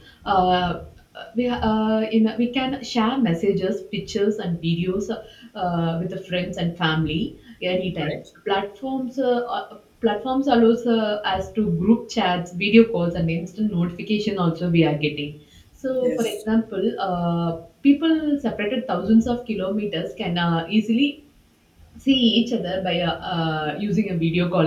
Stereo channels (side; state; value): both; identical; correlation 1.00